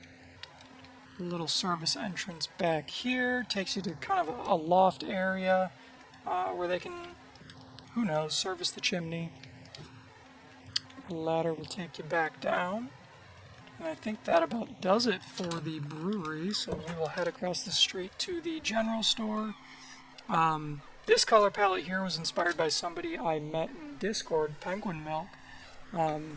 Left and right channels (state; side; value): identical; both; correlation 1.00